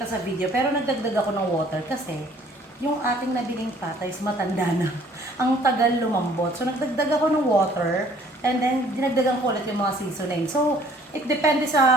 sa video, pero nagdagdag ako ng water kasi yung ating nabiling pata is matanda na. Ang tagal lumambot. So, nagdagdag ako ng water and then dinagdagan ko ulit yung mga seasoning. So, it depende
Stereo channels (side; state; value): both; normal; correlation 0.57